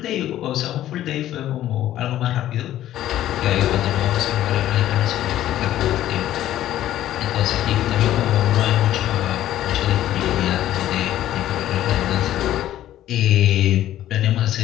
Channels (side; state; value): right; quieter; 13.0 dB